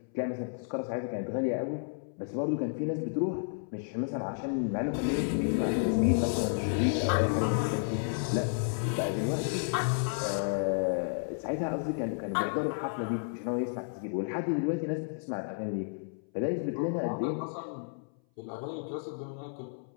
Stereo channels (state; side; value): silent; right; 57 dB below the other